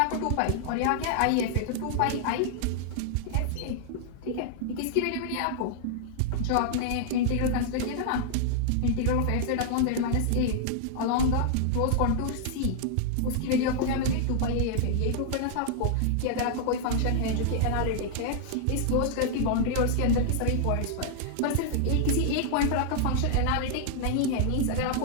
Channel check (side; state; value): both; different; correlation -0.01